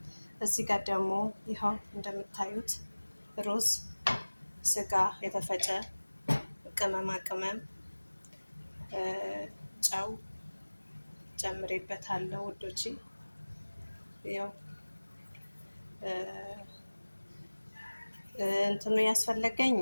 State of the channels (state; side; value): inverted; both; correlation -1.00